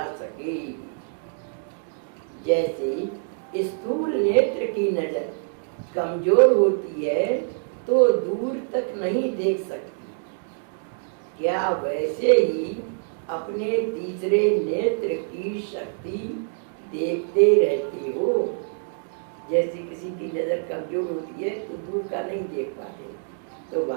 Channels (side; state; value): left; silent; digital silence